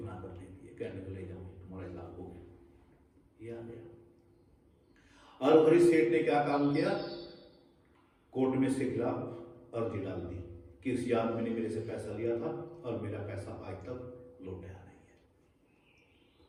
दे दी। कहने को ले जाओ तुम्हारा हिसाब हो गया, ये आ गया। और हरीश सेठ ने क्या काम किया, कोर्ट में से खिलाफ अर्जी डाल दी कि इस याद मैंने मेरे से पैसा लिया था और मेरा पैसा आज तक लौटाया नहीं है।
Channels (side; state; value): both; identical; correlation 1.00